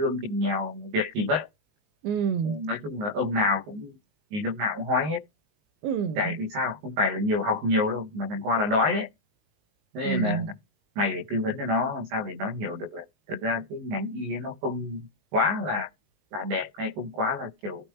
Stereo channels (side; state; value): left; late; 19 ms